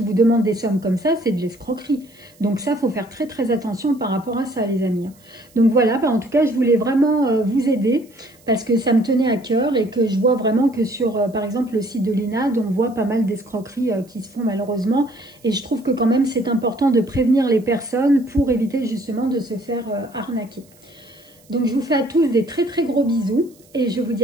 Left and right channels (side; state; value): right; noise; hiss, 29 dB below the sound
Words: vous demande des sommes comme ça, c'est de l'escroquerie. Donc ça, il faut faire très très attention par rapport à ça, les amis. Donc voilà, en tout cas, je voulais vraiment vous aider parce que ça me tenait à cœur et que je vois vraiment que sur, par exemple, le site de l'INAD, on voit pas mal d'escroqueries qui se font malheureusement. Et je trouve que quand même, c'est important de prévenir les personnes pour éviter justement de se faire arnaquer. Donc je vous fais à tous des très très gros bisous et je vous dis